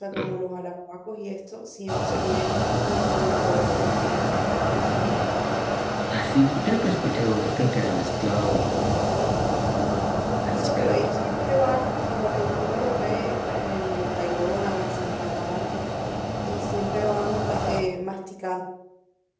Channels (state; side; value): identical; both; correlation 1.00